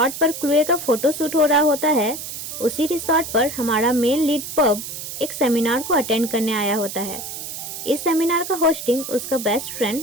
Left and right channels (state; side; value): noise; right; hiss, 8 dB below the sound